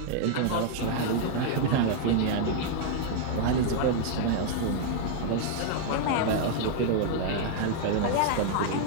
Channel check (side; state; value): both; different; correlation -0.01